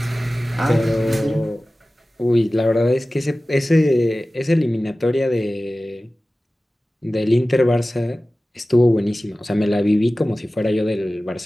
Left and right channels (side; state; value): both; normal; correlation 0.96